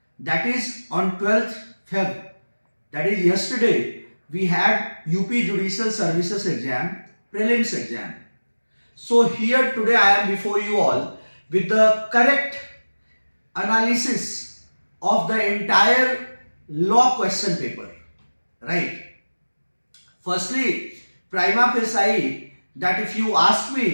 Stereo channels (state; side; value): inverted; both; correlation -1.00